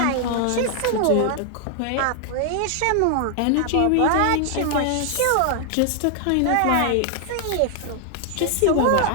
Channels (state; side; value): different; both; correlation 0.00